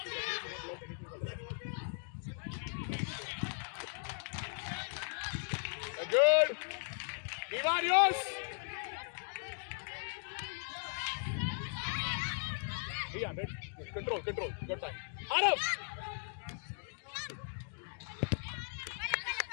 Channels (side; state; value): right; silent; 53 dB below the other